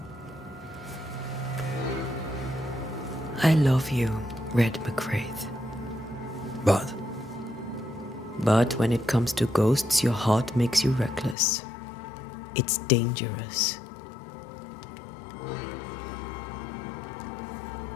I love you, Red McCraith. But But when it comes to ghosts, your heart makes you reckless. It's dangerous.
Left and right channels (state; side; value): drops out; right; at 11.4 s